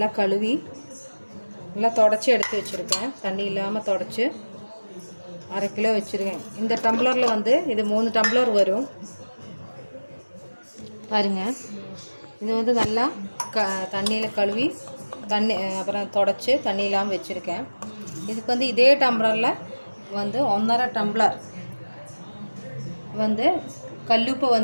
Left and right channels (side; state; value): both; inverted; correlation -1.00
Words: கழுவி நல்லா தொடச்சி எடுத்து வச்சுருக்கேன். தண்ணி இல்லாமல் தொடச்சி 1/2 கிலோ வச்சுருக்கேன். இந்த டம்ளரில் இது 3 டம்ளர் வரும். பாருங்கள், இது நல்லா தண்ணியில் கழுவி அப்புறம் தொடச்சி தண்ணி இல்லாமல் வச்சுருக்கேன். இதுக்கு இதே டம்ளரில் 1.5 டம்ளர்